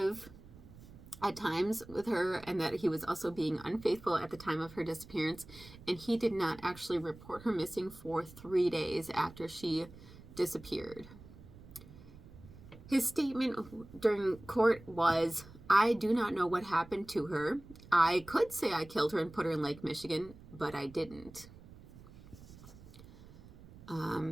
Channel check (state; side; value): noise; right; rumble, 19 dB below the sound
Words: at times with her, and that he was also being unfaithful at the time of her disappearance. And he did not actually report her missing for 3 days after she disappeared. His statement during court was, "I do not know what happened to her. I could say I killed her and put her in Lake Michigan, but I didn't."